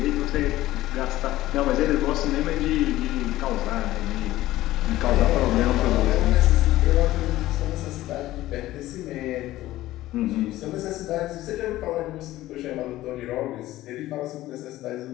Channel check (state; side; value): quieter; right; 15.8 dB